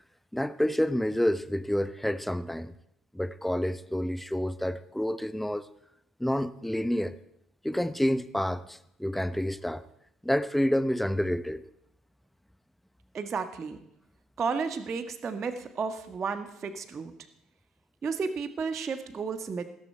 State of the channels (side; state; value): both; normal; correlation 0.94